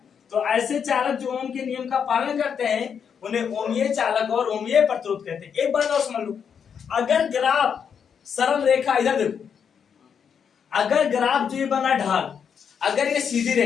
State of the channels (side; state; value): right; quieter; 7.2 dB